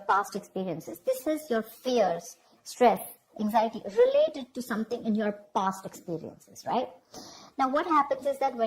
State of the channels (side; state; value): both; identical; correlation 1.00